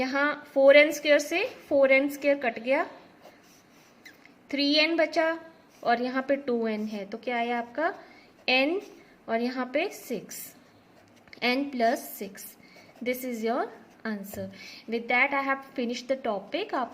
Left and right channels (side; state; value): both; identical; correlation 1.00